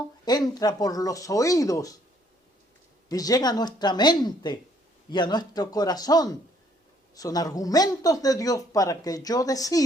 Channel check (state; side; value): normal; both; correlation 0.65